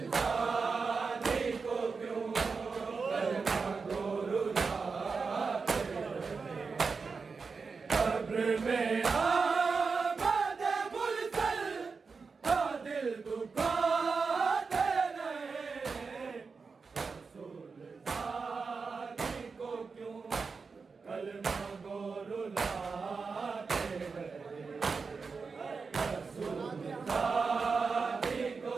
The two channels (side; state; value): left; quieter; 4.8 dB